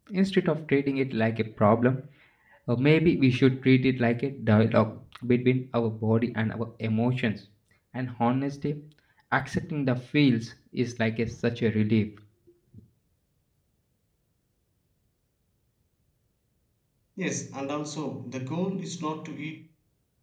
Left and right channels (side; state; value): both; identical; correlation 1.00